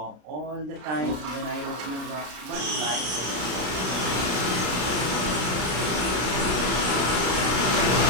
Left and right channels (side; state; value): left; late; 33 ms